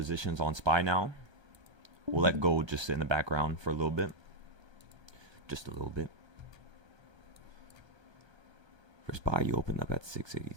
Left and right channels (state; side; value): late; left; 1.3 ms